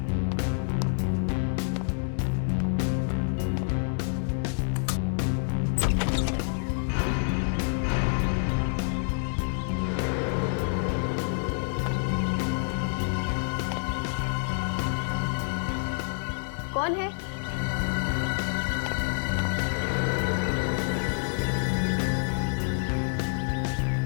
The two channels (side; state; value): right; silent; 60 dB below the other